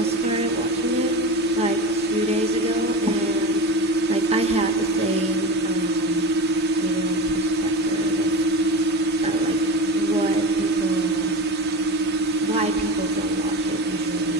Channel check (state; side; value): normal; both; correlation 0.27